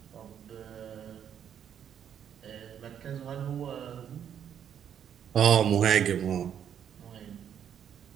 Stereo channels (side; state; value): left; quieter; 8.9 dB